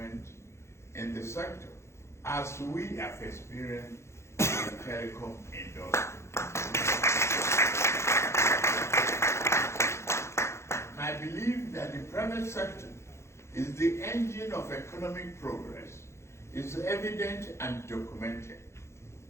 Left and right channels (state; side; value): late; right; 0.13 ms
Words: in the sector, as we have experienced in the telecom industry. I believe that the private sector is the engine of economic progress. It's evident and documented.